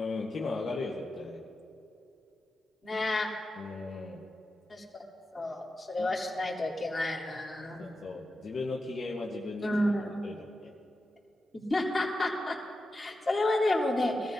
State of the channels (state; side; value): normal; both; correlation 0.90